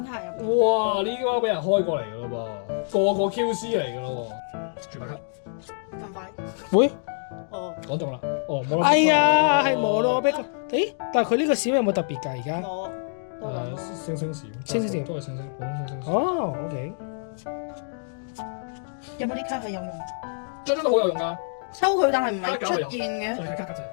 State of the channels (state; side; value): silent; right; digital silence